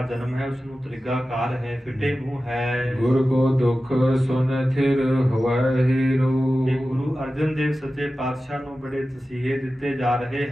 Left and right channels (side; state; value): both; normal; correlation 0.94